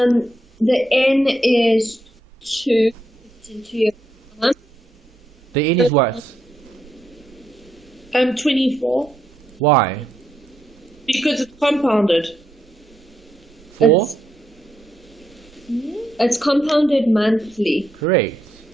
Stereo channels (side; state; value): both; normal; correlation 0.79